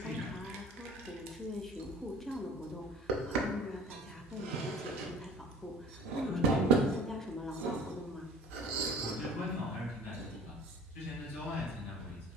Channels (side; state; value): both; normal; correlation 0.46